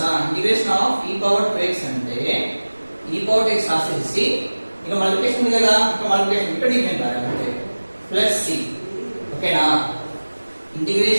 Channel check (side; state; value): both; inverted; correlation -1.00